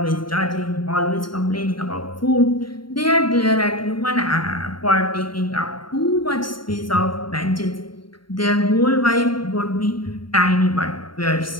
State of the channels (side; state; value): right; late; 0.73 ms